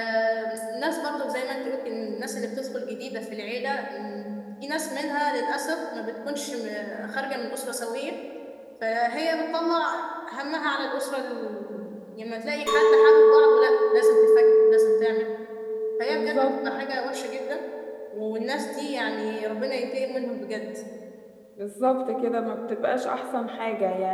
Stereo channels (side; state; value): both; identical; correlation 1.00